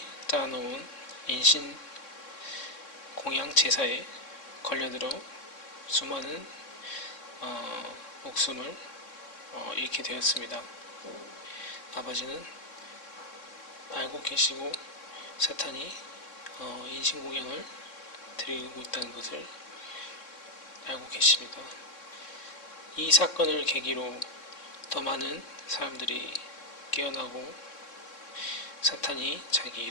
짜놓은 인신 공양 제사에 걸려들어 수많은 목숨을 잃게 되었습니다. 아버지는 알고 계시고 사탄이 인신공양을 드리고 있다는 것을 알고 계십니다. 이 사건을 계기로 더 많은 사람들이 깨어나고 사탄이 자기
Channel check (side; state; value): right; late; 3.6 ms